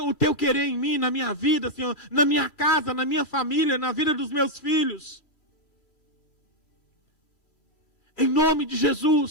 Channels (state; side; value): late; right; 2.4 ms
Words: teu querer em mim, na minha vida, Senhor, na minha casa, na minha família, na vida dos meus filhos. Em nome de